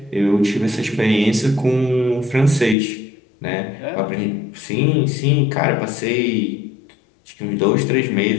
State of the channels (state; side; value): drops out; right; at 2.8 s